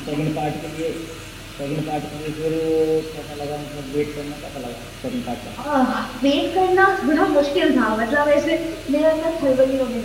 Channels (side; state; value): both; identical; correlation 1.00